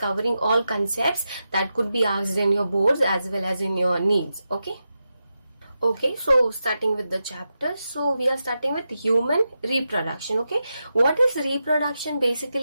all concepts that could be asked in your boards as well as in your needs. Okay, so starting with the chapter. So we are starting with human reproduction. Okay, what is reproduction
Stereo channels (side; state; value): both; inverted; correlation -0.89